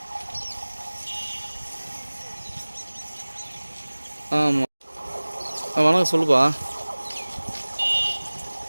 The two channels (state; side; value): inverted; both; correlation -1.00